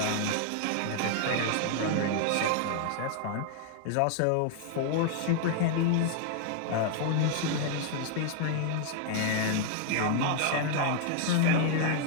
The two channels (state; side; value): different; both; correlation 0.00